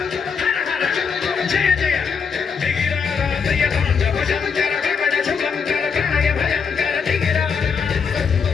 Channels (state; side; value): quieter; right; 6.0 dB